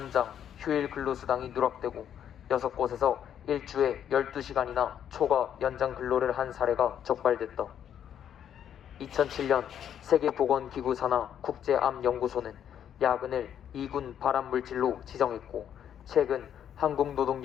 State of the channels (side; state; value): right; quieter; 9.4 dB